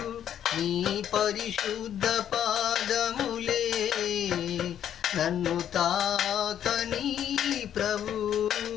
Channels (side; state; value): right; quieter; 10.0 dB